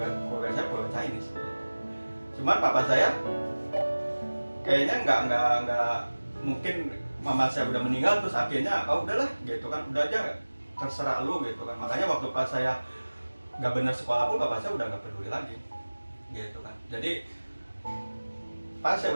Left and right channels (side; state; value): both; inverted; correlation -1.00